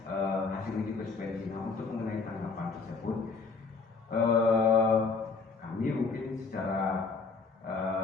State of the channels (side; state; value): right; quieter; 4.5 dB